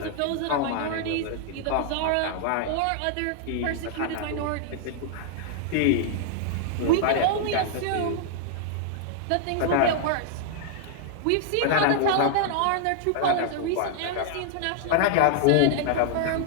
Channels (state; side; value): different; both; correlation -0.01